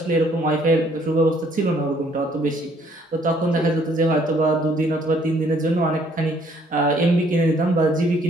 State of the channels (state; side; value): normal; both; correlation 0.63